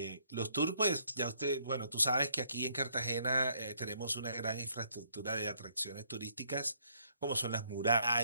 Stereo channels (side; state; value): both; inverted; correlation -0.68